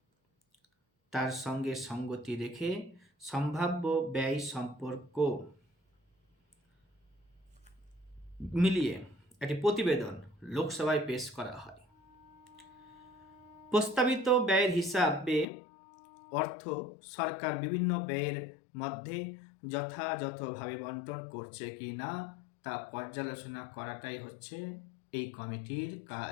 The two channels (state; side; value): drops out; right; at 15.5 s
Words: তার সঙ্গে সঙ্গতি রেখে সম্ভাব্য ব্যয় সম্পর্ক মিলিয়ে একটি প্রতিবেদন লোকসভায় পেশ করা হয়। প্রস্তাবিত ব্যয়ের হিসাবে অর্থ সরকার বিভিন্ন ব্যয়ের মধ্যে যথাযথভাবে বন্টন করছে কি না তা পর্যালোচনা করাটাই হচ্ছে এই কমিটির